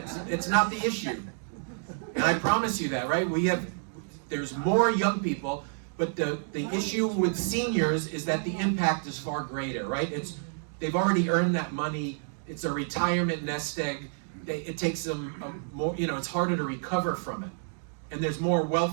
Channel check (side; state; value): left; silent; digital silence